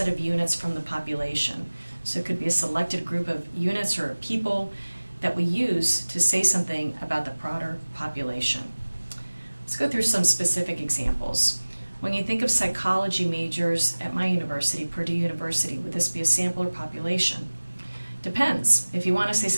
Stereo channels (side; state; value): both; inverted; correlation -1.00